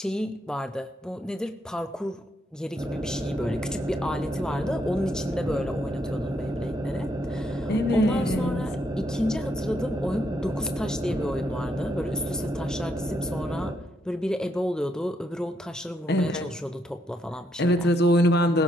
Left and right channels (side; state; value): both; normal; correlation 0.76